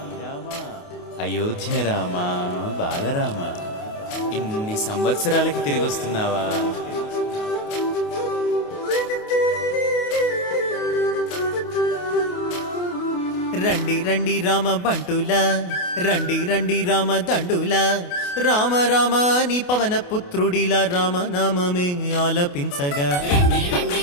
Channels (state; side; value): late; right; 28 ms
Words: అయోధ్య రామా బాలరామ, ఇన్ని సంవత్సరాలకి తిరిగి వస్తున్నావా? రండి రండి రామ బంటులా, రండి రండి రామ దండులా, రామ రామ నీ పవన పుత్రుడిలా రామనామమే ఆలపించగా. రండి రండి